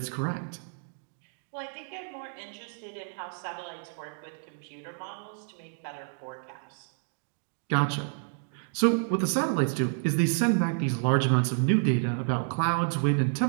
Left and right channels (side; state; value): left; silent; digital silence